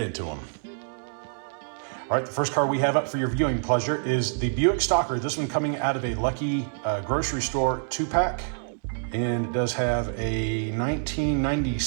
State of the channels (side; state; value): left; silent; 61 dB below the other